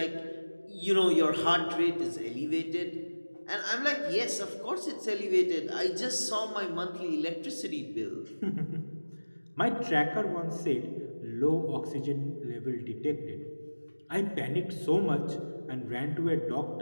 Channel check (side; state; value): both; inverted; correlation -1.00